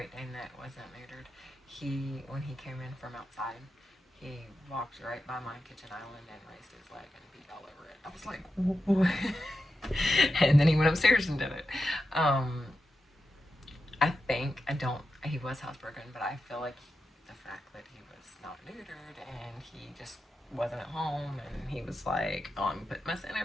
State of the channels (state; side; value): normal; both; correlation 0.89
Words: Dane that wasn't neutered. When he came in from outside, he walked right by my kitchen island and raised his leg and beat all over it. I was like, what? And then he went upstairs and did it. He was housebroken, but I feel like the fact that he was not neutered and he just wasn't at home and he was like, oh, I'm putting my scent